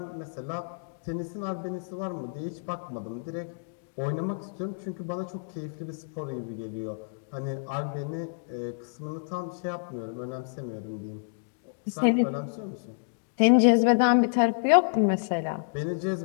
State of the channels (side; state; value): right; silent; digital silence